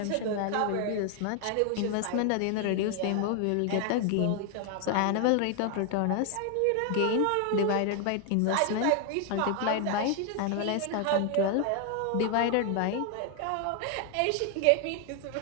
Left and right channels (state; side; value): different; both; correlation 0.00